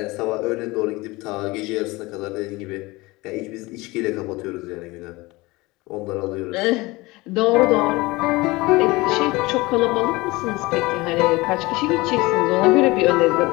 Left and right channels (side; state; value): right; quieter; 22.0 dB